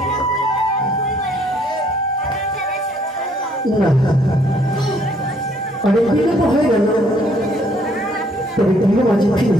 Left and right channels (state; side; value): normal; both; correlation 0.65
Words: অনেক বিলম্ব হয়ে গেল, তবে তুমি মাঝে ফিরে